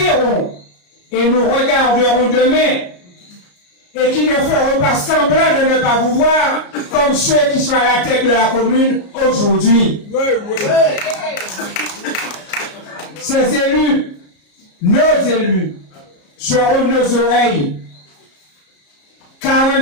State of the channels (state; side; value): late; right; 34 ms